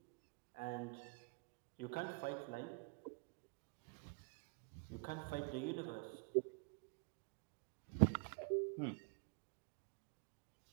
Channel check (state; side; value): quieter; left; 32.3 dB